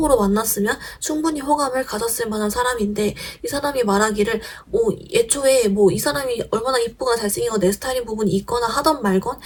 만났으면 충분히 호감을 가졌을 만한 사람인데 이 사람이 말하기를 애초에 뭐 이 사람이 얼마나 이쁘거나 잘생기고 내 스타일인 부분이 있거나 하던 말건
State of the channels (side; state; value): both; identical; correlation 1.00